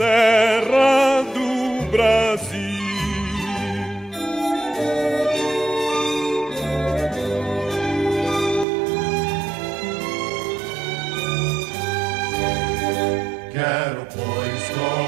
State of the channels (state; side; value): drops out; left; at 8.7 s